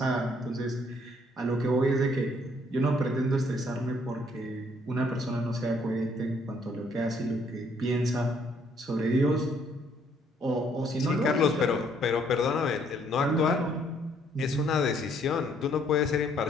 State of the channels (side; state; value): both; normal; correlation 0.66